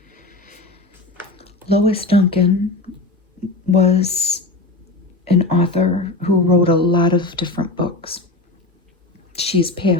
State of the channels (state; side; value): quieter; right; 3.1 dB